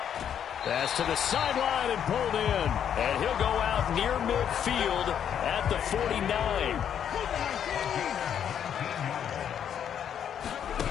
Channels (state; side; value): quieter; right; 8.9 dB